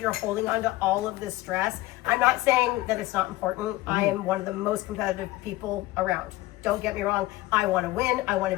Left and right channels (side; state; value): right; quieter; 18.1 dB